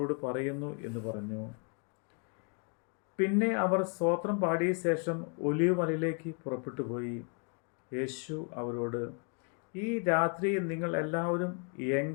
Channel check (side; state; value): right; quieter; 37.8 dB